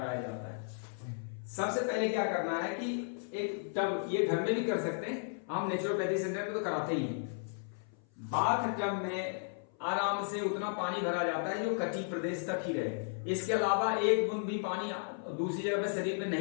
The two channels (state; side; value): silent; right; 55 dB below the other